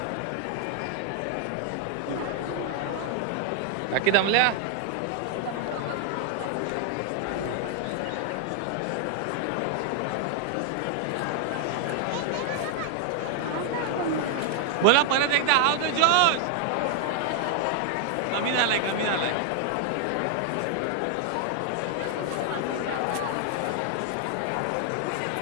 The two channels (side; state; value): both; different; correlation 0.00